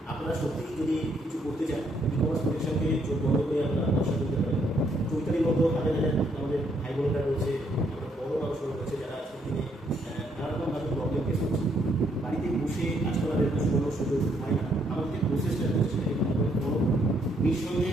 আপনারা সত্যিই যদি কিছু করতে চান, ই-কমার্স প্রতিষ্ঠানকে চোখ বন্ধ করে আপনারা ব্যবসা করতে পারেন। চৈতালির মতো হাজার হাজার আমাদের ভাই বোনেরা রয়েছে, আমরা বড় মানুষরা রয়েছে যারা আজকের দিনে নানারকমভাবে প্রবলেম ফেস করছে। বাড়িতে বসে কাজ করার একটা সুযোগ হয় না, আমাদের যে প্রসেসটা রয়েছে সেটা কিন্তু বড়।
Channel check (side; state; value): both; normal; correlation 0.71